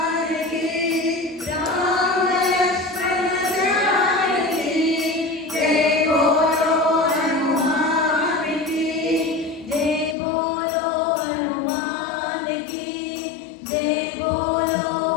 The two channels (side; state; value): right; drops out; at 10.2 s